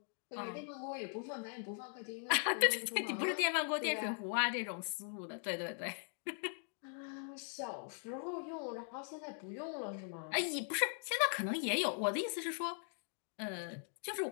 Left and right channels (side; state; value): right; silent; 51 dB below the other